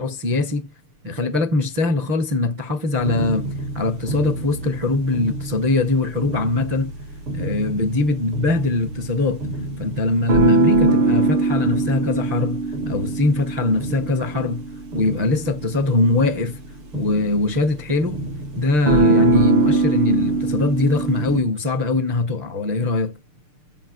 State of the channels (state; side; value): late; left; 6.6 ms